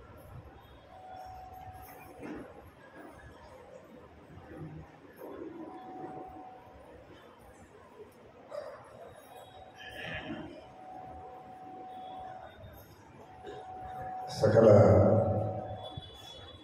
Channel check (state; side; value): identical; both; correlation 1.00